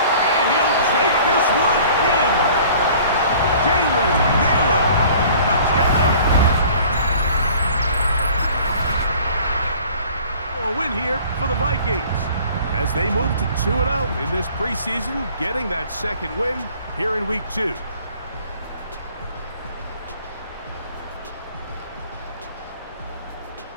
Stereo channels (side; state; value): both; inverted; correlation -0.50